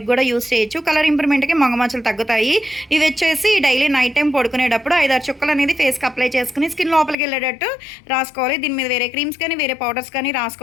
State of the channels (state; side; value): drops out; right; at 7.2 s